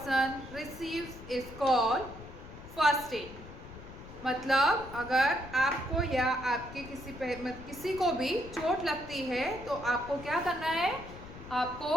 receives is called first aid. मतलब अगर आपको या आपके किसी को भी चोट लगती है तो आपको क्या करना है?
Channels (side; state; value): left; noise; rumble, 15 dB below the sound